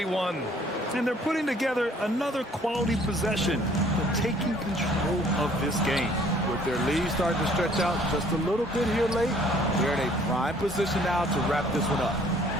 And they're putting together another quality possession, but taking control of this game. With their lead starting to stretch out just a little bit here late, they're in a prime position now to wrap this one up.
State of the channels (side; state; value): both; normal; correlation 0.58